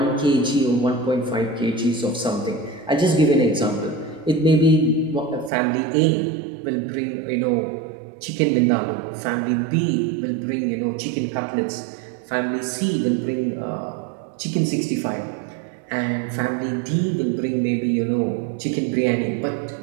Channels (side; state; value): left; drops out; at 5.5 s